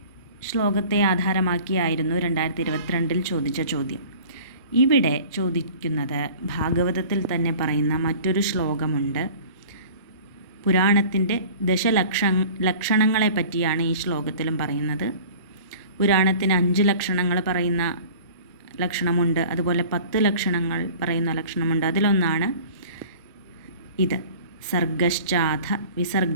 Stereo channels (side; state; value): both; inverted; correlation -0.44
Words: ശ്ലോകത്തെ ആധാരമാക്കിയായിരുന്നു 2022 ചോദിച്ച ചോദ്യം. ഇവിടെ ചോദിക്കുന്നത് ഭാഗവതത്തിൽ തന്നെ പറയുന്ന മറ്റൊരു ശ്ലോകമുണ്ട്. പുരാണത്തിൻ്റെ ലക്ഷണങ്ങളെ പറ്റിയാണ് ഈ ശ്ലോകത്തിലും പറയുന്നത്. പുരാണത്തിന് 5 ലക്ഷണങ്ങൾ പറയുന്ന ലക്ഷണമുണ്ട്, അതുപോലെ 10 ലക്ഷണങ്ങൾ പറയുന്ന ലക്ഷണമുണ്ട്. അതിലൊന്നാണ് ഇത്. സർഗശ്ചാധ